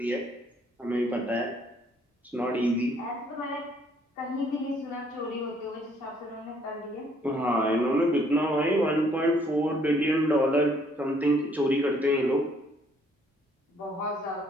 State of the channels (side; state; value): both; normal; correlation 0.65